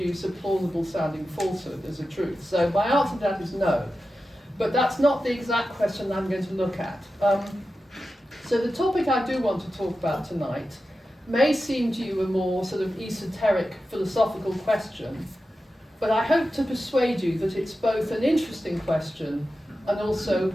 a plausible sounding falsehood as a truth. So my answer to that is no. But that's not the exact question I'm going to look at. So the topic I do want to talk about tonight may seem to you a more sort of esoteric philosophical question, but I hope to persuade you that it's both an interesting question and also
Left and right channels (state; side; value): normal; both; correlation 0.92